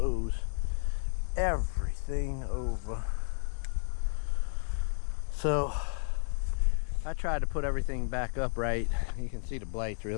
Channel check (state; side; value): silent; right; 56 dB below the other